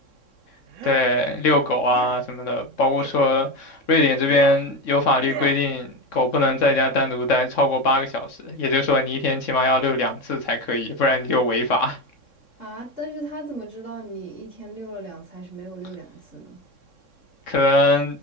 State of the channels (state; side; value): late; right; 3.6 ms